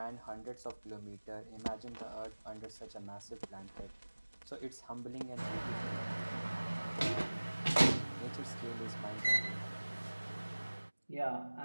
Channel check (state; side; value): inverted; both; correlation -1.00